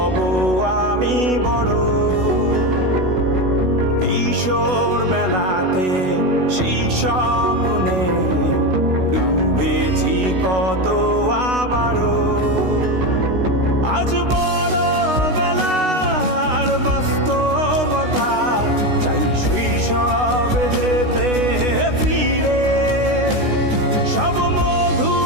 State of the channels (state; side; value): late; left; 16 ms